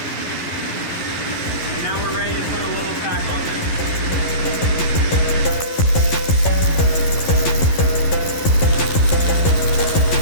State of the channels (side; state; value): right; late; 11 ms